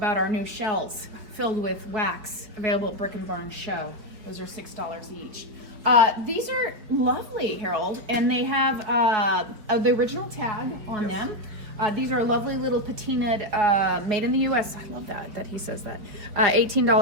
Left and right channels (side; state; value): left; late; 4.9 ms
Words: our new shells filled with wax available at Brick and Barn Show. Those are $6 each. These are lovely, Harold, and they have the original tag on them. These are lovely little patinaed, made in the U.S. I love that he says that.